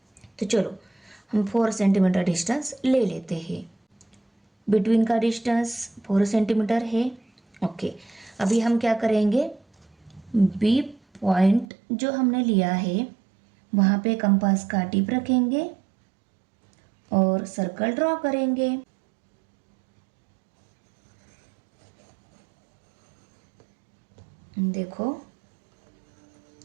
तो चलो हम 4 सेंटीमीटर डिस्टेंस ले लेते हैं। बिटवीन का डिस्टेंस 4 सेंटीमीटर है। ओके, अभी हम क्या करेंगे, बी पॉइंट जो हमने लिया है वहाँ पे कंपास का टिप रखेंगे और सर्कल ड्रॉ करेंगे। देखो,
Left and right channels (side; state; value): left; drops out; at 11.7 s